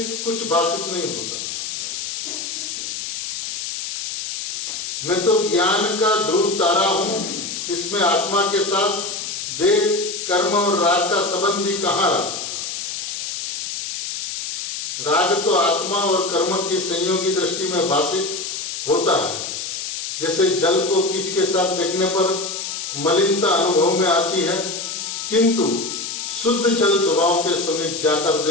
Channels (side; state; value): left; noise; hiss, 5 dB below the sound